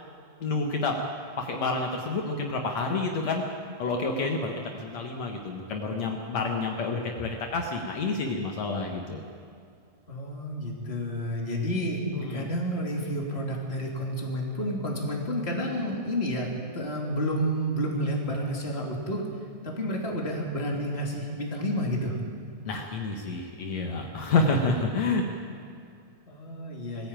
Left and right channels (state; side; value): late; left; 1.6 ms